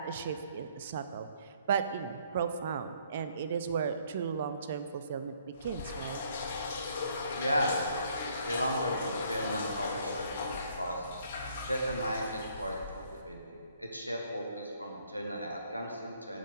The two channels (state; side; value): inverted; both; correlation -0.65